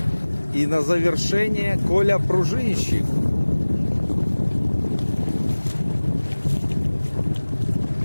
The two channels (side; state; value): both; inverted; correlation -1.00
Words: И на завершение Коля Пружинщик.